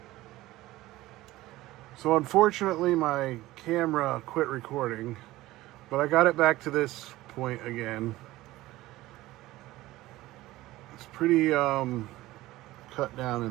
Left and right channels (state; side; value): quieter; left; 17.3 dB